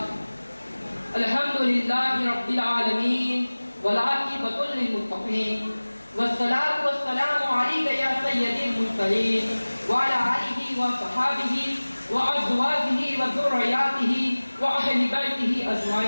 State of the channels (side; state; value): both; inverted; correlation -1.00